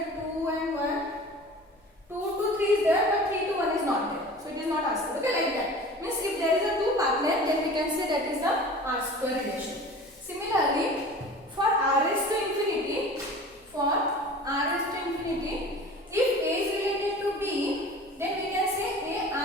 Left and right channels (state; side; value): normal; both; correlation 0.41